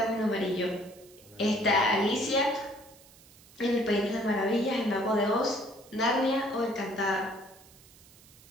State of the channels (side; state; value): right; noise; hiss, 24 dB below the sound